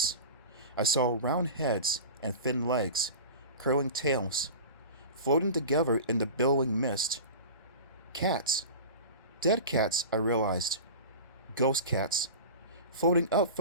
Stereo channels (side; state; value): both; inverted; correlation -0.33